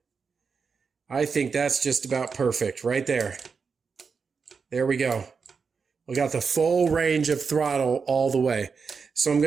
I think that's just about perfect right there. There we go. We got the full range of throttle all the way. So I'm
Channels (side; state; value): left; quieter; 5.5 dB